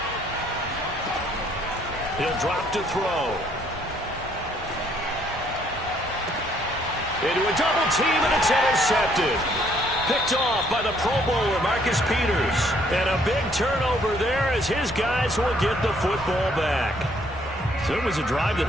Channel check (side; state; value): both; normal; correlation 0.66